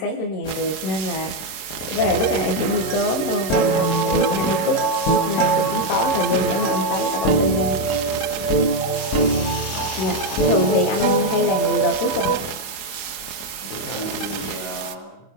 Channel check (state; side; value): late; right; 26 ms